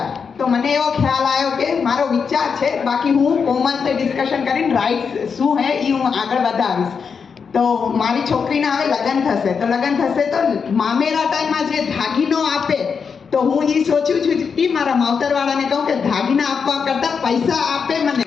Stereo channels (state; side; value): quieter; right; 6.0 dB